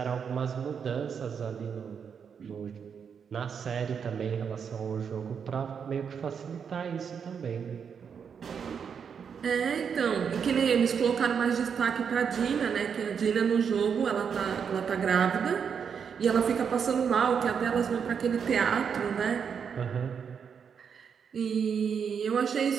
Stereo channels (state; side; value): quieter; left; 6.9 dB